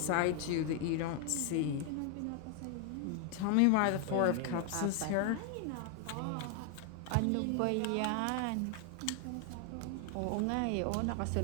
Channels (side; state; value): both; different; correlation 0.00